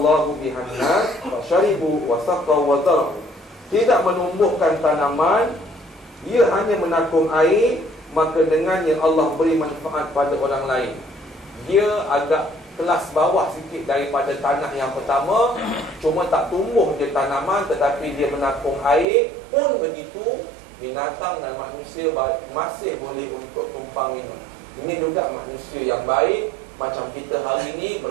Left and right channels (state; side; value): drops out; left; at 19.1 s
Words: bihan nas fa syaribu wa saqaw wa zara'u. Tidak menumbuhkan tanaman, ia hanya menakung air, maka dengannya Allah beri manfaat pada orang lain. Dia agak kelas bawah sikit daripada tanah yang pertama, cuma tak tumbuh je tanaman, tetapi dia menakung air. Pun begitu, binatang dan manusia masih boleh untuk tumpang minum. Ini juga manusia yang baik. Macam kita hari ini